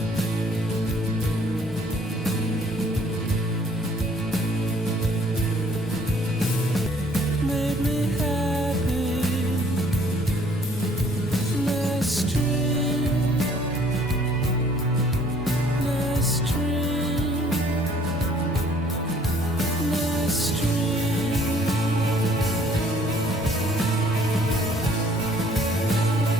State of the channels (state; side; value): normal; both; correlation 0.59